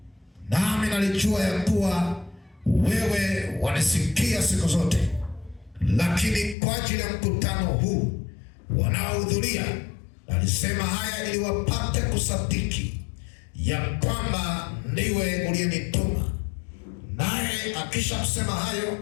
nami nalijua ya kuwa wewe wanisikia siku zote, lakini kwa ajili ya mkutano huu wanaohudhuria alisema haya ili wapate kusadiki ya kwamba ndiwe uliyenituma. Naye akisha kusema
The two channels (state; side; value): drops out; right; at 6.6 s